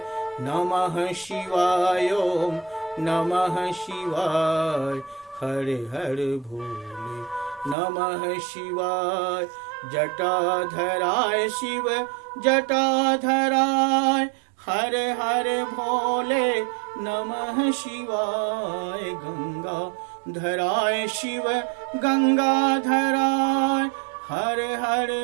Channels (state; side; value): drops out; left; at 7.8 s